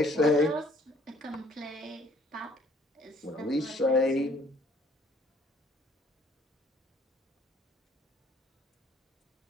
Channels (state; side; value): normal; both; correlation 0.59